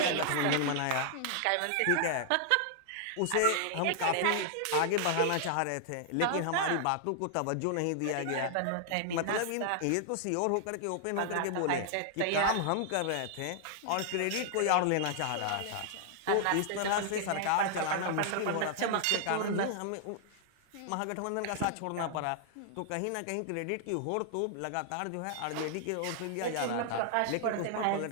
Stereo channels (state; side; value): different; both; correlation -0.01